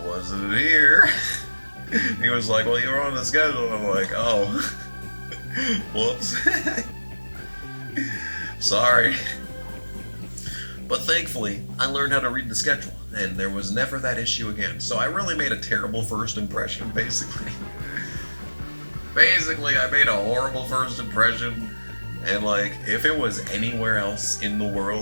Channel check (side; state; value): both; inverted; correlation -1.00